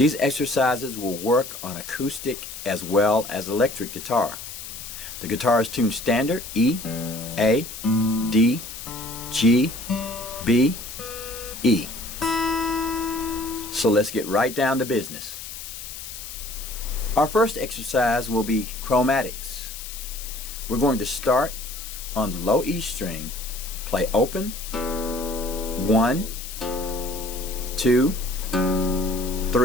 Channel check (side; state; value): left; noise; hiss, 10 dB below the sound